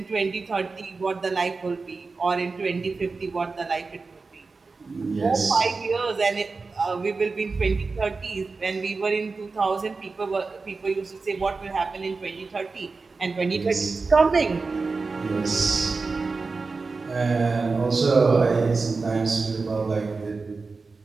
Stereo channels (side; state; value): left; quieter; 4.1 dB